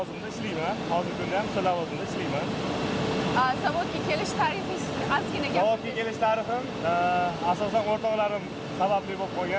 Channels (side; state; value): both; identical; correlation 1.00